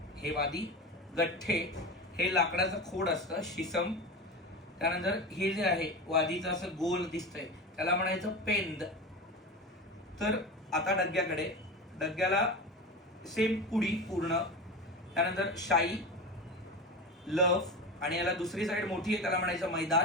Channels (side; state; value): both; normal; correlation 0.26